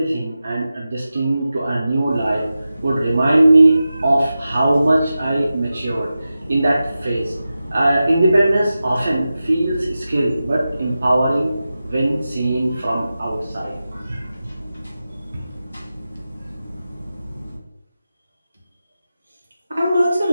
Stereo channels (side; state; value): both; inverted; correlation -0.93